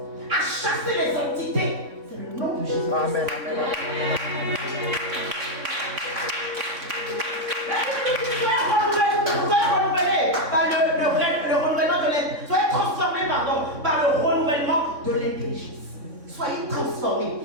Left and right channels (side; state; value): left; late; 3.6 ms